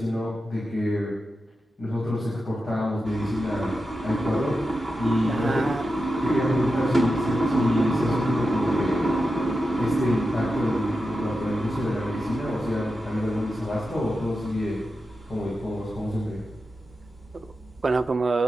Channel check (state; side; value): normal; both; correlation 0.90